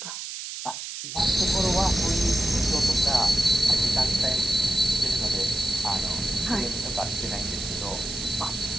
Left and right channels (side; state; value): right; noise; hiss, 8 dB below the sound